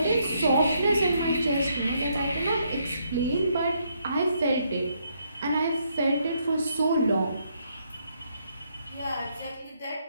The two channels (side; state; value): both; inverted; correlation -0.74